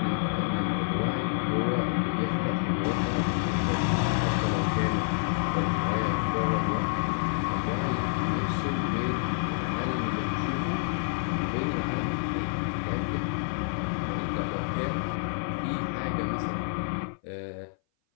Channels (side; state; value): right; silent; 58 dB below the other